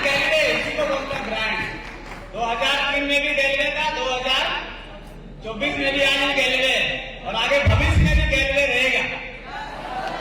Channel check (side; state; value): both; identical; correlation 1.00